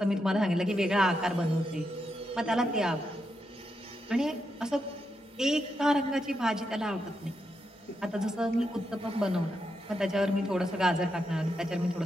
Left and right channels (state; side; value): normal; both; correlation 0.84